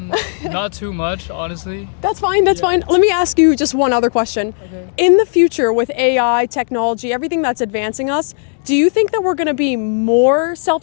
too much, honestly. That's fine. Let me ask you just one other question. Okay. In the future with AI, technology, everything that's advancing us, do you think that we're going to be more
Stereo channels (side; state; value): right; silent; 69 dB below the other